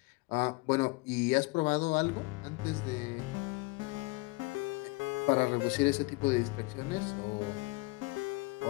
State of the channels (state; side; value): quieter; right; 25.3 dB